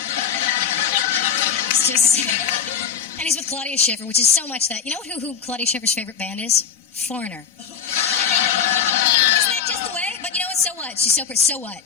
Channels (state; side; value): quieter; right; 7.3 dB